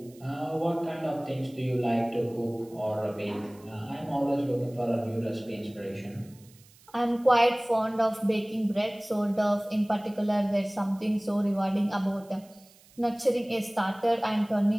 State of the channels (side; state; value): right; noise; hiss, 27 dB below the sound